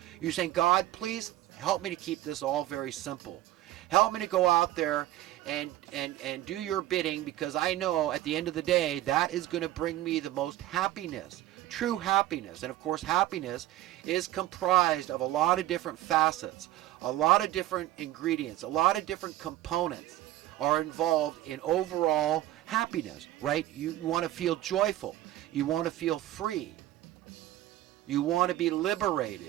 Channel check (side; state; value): left; quieter; 14.8 dB